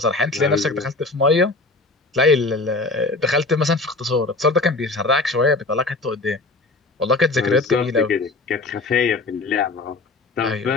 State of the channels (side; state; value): right; quieter; 3.3 dB